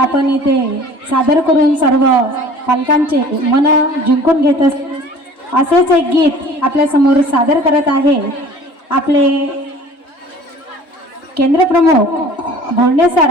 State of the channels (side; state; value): right; late; 3.0 ms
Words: इथे सादर करून सर्व पालकांचे मन जिंकून घेत असेच एक गीत आपल्या समोर सादर करत आहे आपले केंद्र प्रमुख भोंडे सर.